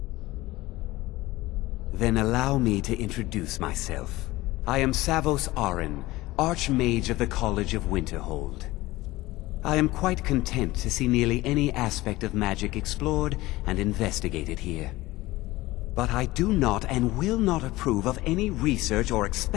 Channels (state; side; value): quieter; right; 18.8 dB